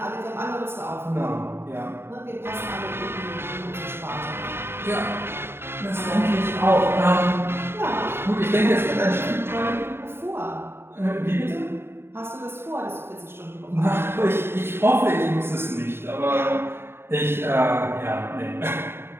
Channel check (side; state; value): left; late; 0.11 ms